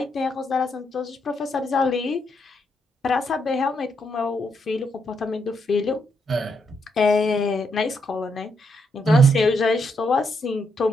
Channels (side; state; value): both; normal; correlation 0.78